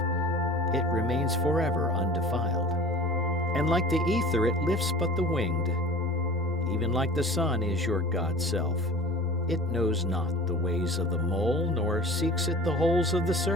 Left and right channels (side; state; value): both; normal; correlation 0.41